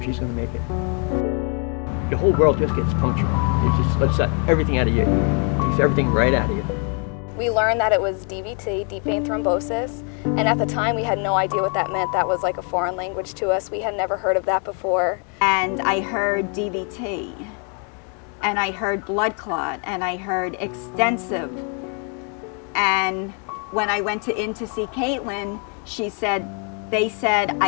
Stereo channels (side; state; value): right; quieter; 39.5 dB